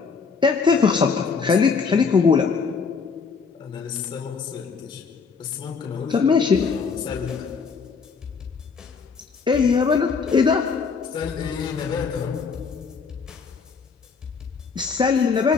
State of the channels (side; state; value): right; quieter; 5.3 dB